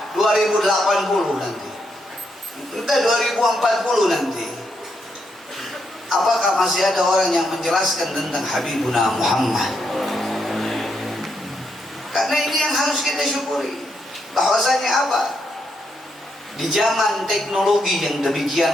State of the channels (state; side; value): normal; both; correlation 0.79